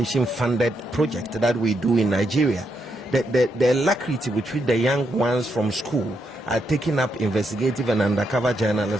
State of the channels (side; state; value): both; normal; correlation 0.80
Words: funded project that we do in Nigeria. The alacrity with which the young ones from school are taking up investigative and undercover